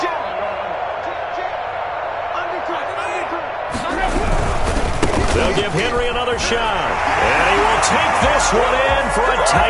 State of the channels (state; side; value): identical; both; correlation 1.00